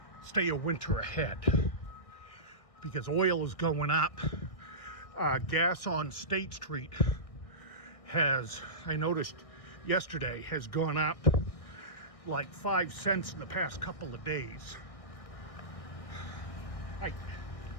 stay a winter ahead because oil is going up. Gas on State Street has, I noticed yesterday, has gone up like 5 cents in the past couple of days.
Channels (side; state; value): right; late; 1.6 ms